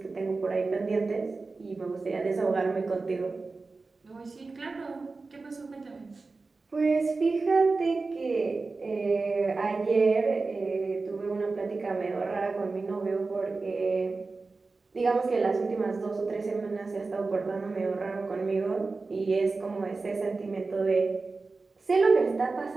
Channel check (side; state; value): left; quieter; 3.9 dB